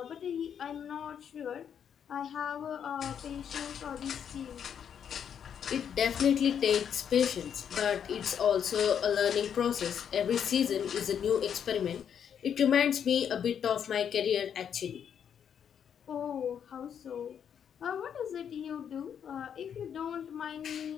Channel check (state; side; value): quieter; right; 8.2 dB